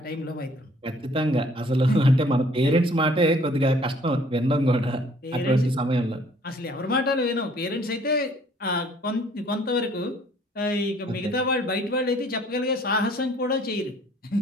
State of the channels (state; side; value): normal; both; correlation 0.58